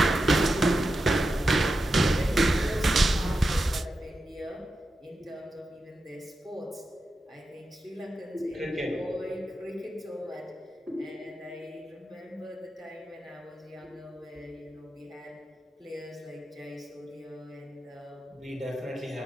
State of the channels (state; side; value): normal; both; correlation 0.89